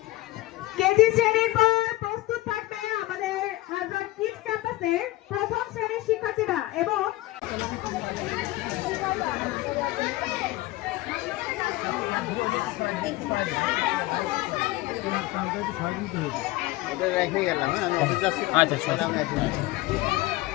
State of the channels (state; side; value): quieter; right; 18.4 dB